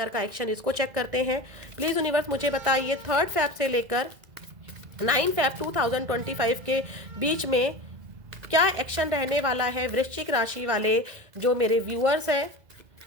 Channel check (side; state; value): left; late; 2.0 ms